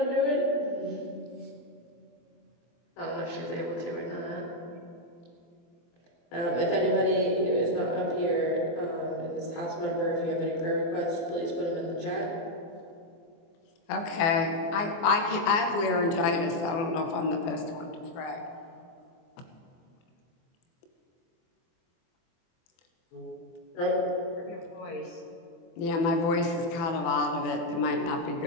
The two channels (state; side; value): late; right; 24 ms